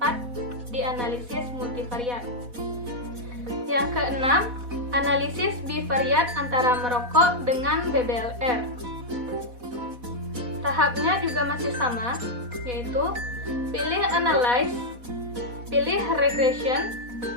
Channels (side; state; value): left; late; 4.1 ms